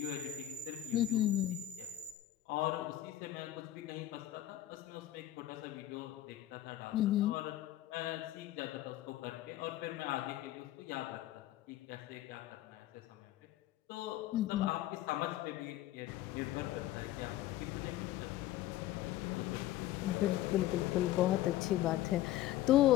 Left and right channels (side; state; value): right; quieter; 14.0 dB